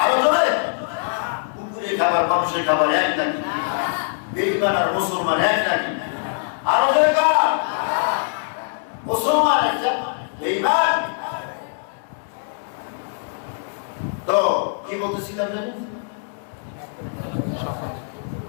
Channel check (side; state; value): right; silent; digital silence